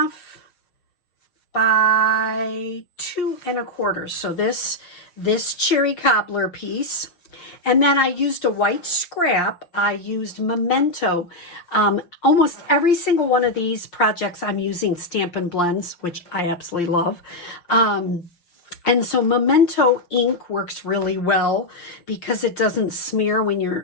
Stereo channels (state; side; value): late; right; 5.9 ms